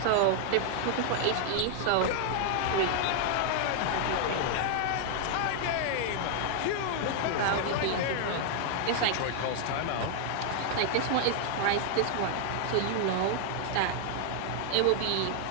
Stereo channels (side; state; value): both; different; correlation 0.00